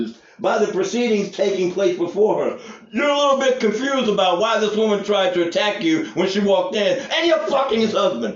by the proceedings taking place before her. You're a little bit confused about why this woman tried to attack you when she walked in, and you're fucking his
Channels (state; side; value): identical; both; correlation 1.00